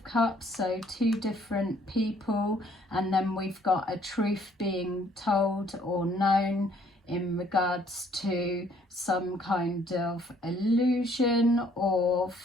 Cups, so two different people, and then we've got a truth being told or known in regards to some kind of illusion or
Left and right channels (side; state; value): both; normal; correlation 0.63